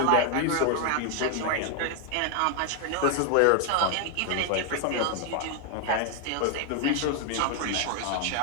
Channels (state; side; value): different; both; correlation 0.00